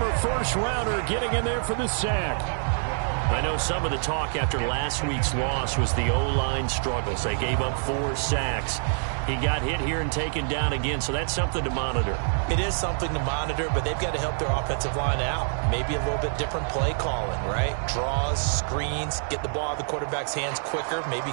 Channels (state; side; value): silent; left; digital silence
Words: first-rounder, getting in there for the sack. I know some of the talk after last week's loss was the O-line struggles. They gave up 4 sacks. He got hit here and taken down again, so that's something to monitor. It is something to monitor, but they've got to help their offensive line out. Maybe a little bit different play calling, right? Draws, screens, get the ball out of the quarterback's hands quicker, maybe